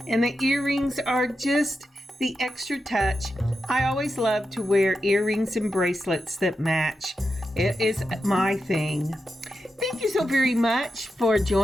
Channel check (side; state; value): both; normal; correlation 0.89